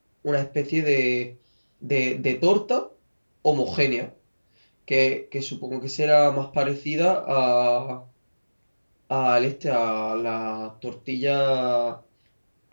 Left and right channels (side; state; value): both; inverted; correlation -1.00